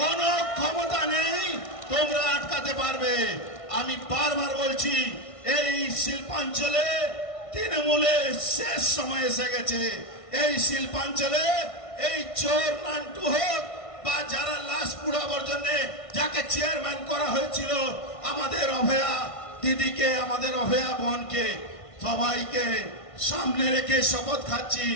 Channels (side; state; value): right; late; 1.5 ms